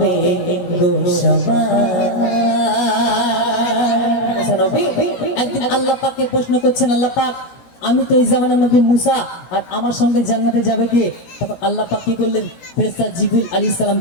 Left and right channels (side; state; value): right; late; 17 ms